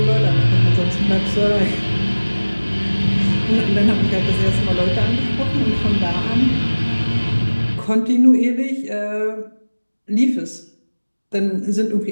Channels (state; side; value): inverted; both; correlation -1.00